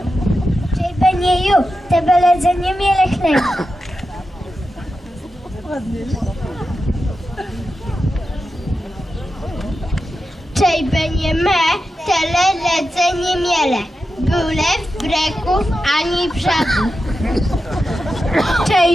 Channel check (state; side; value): normal; both; correlation 0.90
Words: Čej benjeju, tebe ledzenje mijele hleb. Čej benje me, tele ledzenje miele. Byle w breków ani brzegu.